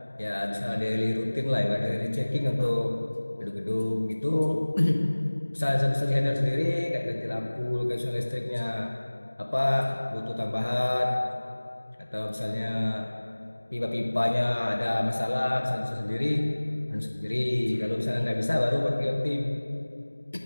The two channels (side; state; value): both; inverted; correlation -1.00